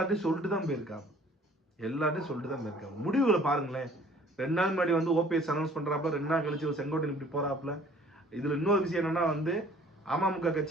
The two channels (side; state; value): both; normal; correlation 0.54